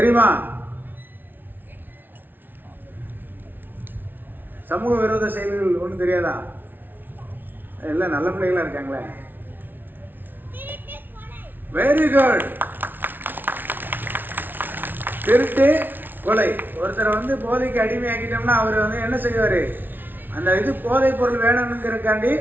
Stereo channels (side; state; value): left; late; 0.092 ms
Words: சமூக விரோத செயல்கள் ஒன்றும் தெரியாதா? எல்லாம் நல்ல பிள்ளைகளா இருக்காங்களே. Very good. திருட்டு, கொலை. ஒருத்தரை வந்து போதைக்கு அடிமையாக்கிட்டோம்னா அவர் வந்து என்ன செய்வார்? அந்த இது போதை பொருள் வேணும்ங்கிறக்காண்டி